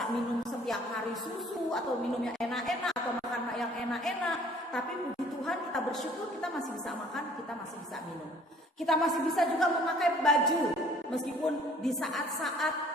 minum setiap hari susu atau minum yang enak-enak atau makan yang enak-enak. Tapi puji Tuhan kita bersyukur kita masih bisa makan, kita masih bisa minum. Kita masih bisa juga memakai baju. Meskipun di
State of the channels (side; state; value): both; normal; correlation 0.56